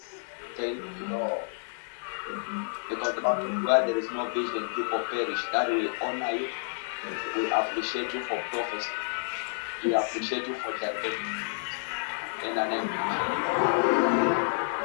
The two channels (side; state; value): right; silent; 58 dB below the other